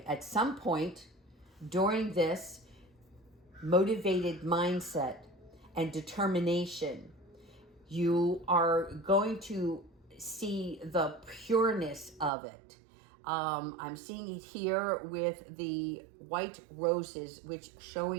at some point during this motivated mindset and determination, you are going to see the pureness of it. I'm seeing it here with the white roses, which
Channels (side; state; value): left; drops out; at 12.3 s